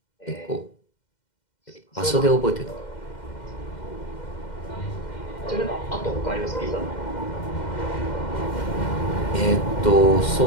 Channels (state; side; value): late; right; 2.1 ms